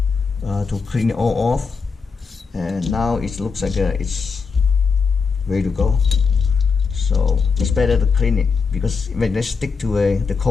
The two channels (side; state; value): right; quieter; 5.1 dB